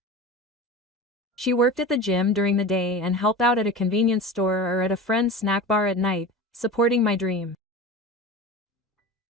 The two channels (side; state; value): both; normal; correlation 0.31